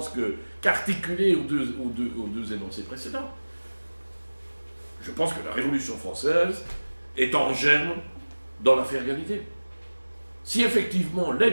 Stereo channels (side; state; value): both; inverted; correlation -1.00